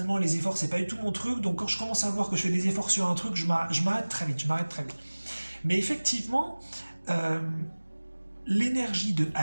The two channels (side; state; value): both; inverted; correlation -1.00